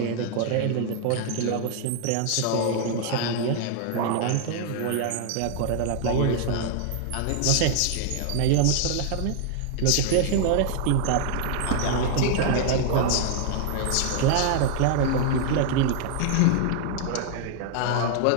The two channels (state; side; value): different; both; correlation -0.01